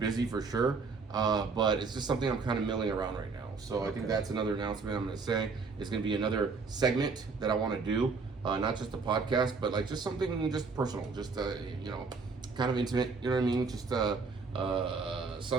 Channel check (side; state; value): left; quieter; 4.5 dB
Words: for sure, but it's just something I'm kind of milling around right now. So I think that's another announcement I'm going to say. It's going to be another segment that I want to do, not just a podcast, but like just something just personal, just, kind of intimate, you know what I mean? Just